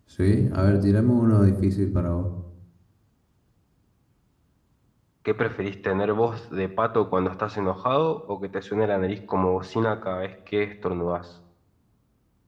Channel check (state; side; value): identical; both; correlation 1.00